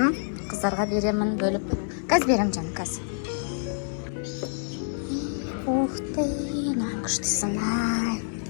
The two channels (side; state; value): right; silent; 60 dB below the other